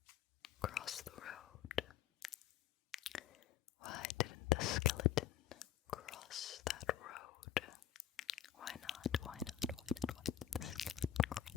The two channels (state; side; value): quieter; right; 10.7 dB